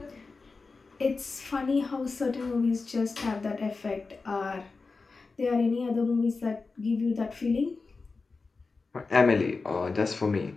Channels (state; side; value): quieter; right; 4.1 dB